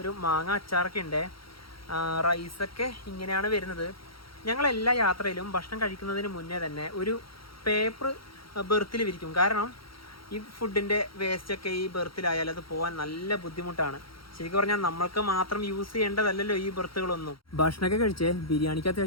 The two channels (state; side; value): late; right; 0.74 ms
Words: മാങ്ങ അച്ചാറൊക്കെ ഉണ്ട്. റൈസൊക്കെ ഇങ്ങനെയാണ് വരുന്നത്. ഞങ്ങളെല്ലാ യാത്രയിലും ഭക്ഷണം കഴിക്കുന്നതിന് മുന്നേ തന്നെ ഒരു പേപ്പർ ബെർത്തിൽ വിരിക്കും. കാരണം ഈ ഫുഡിൻ്റെ വേസ്റ്റൊക്കെ ഈ ബെർത്തിലായാൽ അത് പോകാൻ നല്ല ബുദ്ധിമുട്ടാണ്. ശരിക്കും പറഞ്ഞാൽ നമ്മൾക്ക് മാത്രം യൂസ് ചെയ്യേണ്ടതല്ലല്ലോ ഈ ബെർത്തുകളൊന്നും. ഭക്ഷണമൊക്കെ കഴിച്ച് ബിരിയാണിക്ക്